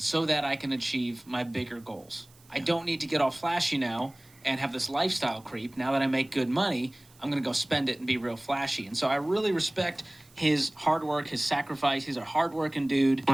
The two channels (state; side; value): noise; right; hiss, 28 dB below the sound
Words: so that I can achieve my bigger goals. I don't need to get all flashy now and have this lifestyle creep. Now that I make good money, I'm going to go spend it and be real flashy. And so I really respect his hard work, his sacrifice. He's a hard-working dude.